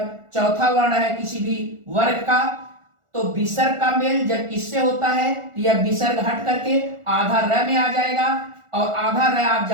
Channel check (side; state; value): left; late; 1.4 ms